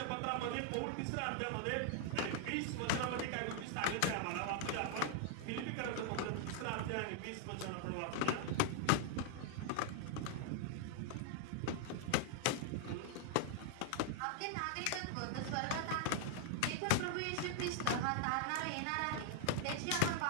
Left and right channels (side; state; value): both; different; correlation -0.01